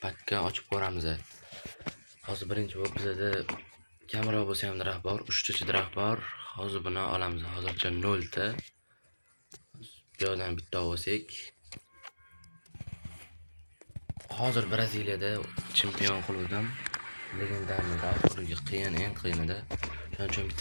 pakka ochib ko'ramiz. Hozir birinchi bo'lib bizda kamera bo'lsa ham daraxt bor, 3 ta daraxt bor. Hozir buni olamiz. Hozircha 0 ta. Bu yerdan bitta olsak. Hozir Braziliyada chempion klubdan legendarniy oxirgi eng qiyinida. Shuning uchun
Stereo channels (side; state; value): both; inverted; correlation -1.00